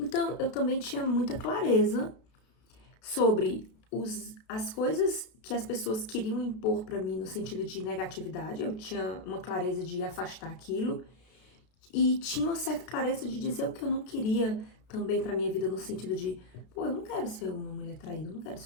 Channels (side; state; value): right; late; 32 ms